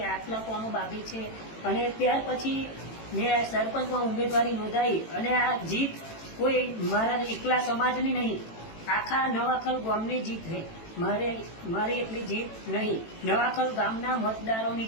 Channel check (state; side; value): late; right; 18 ms